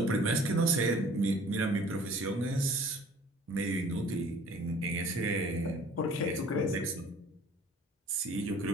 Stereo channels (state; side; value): normal; both; correlation 0.50